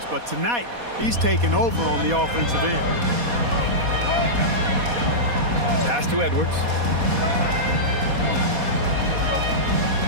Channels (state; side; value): late; left; 4.2 ms